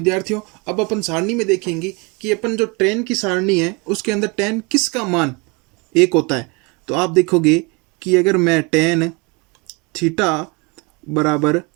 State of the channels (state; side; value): quieter; left; 28.9 dB